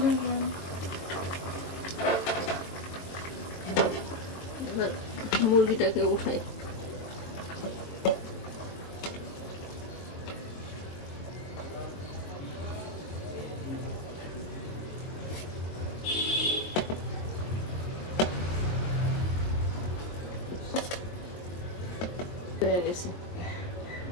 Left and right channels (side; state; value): right; late; 22 ms